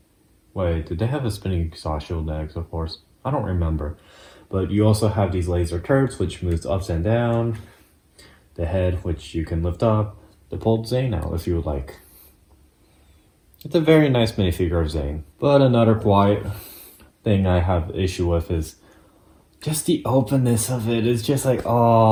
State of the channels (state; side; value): identical; both; correlation 1.00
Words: Wait, did they have a spinning saw shield in Exoforce? I don't remember. But you also have these laser turrets, which moves ups and down. The head, which you can lift up. The pulled Zane out if you would like. It's a very nice minifigure of Zane. But another quiet thing I have issue with is just the openness of it. It's just like,